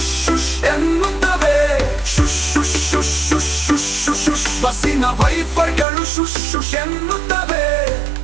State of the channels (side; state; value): left; drops out; at 5.9 s